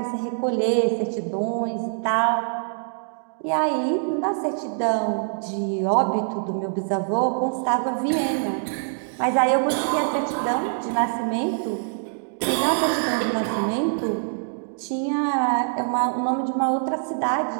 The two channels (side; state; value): left; silent; digital silence